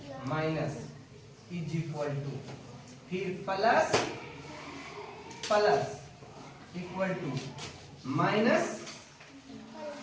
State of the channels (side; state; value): both; identical; correlation 1.00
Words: minus is equal to, फिर plus plus equal to, minus